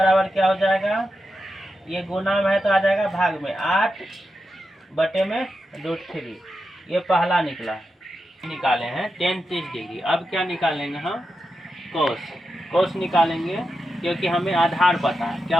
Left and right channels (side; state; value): both; normal; correlation 0.88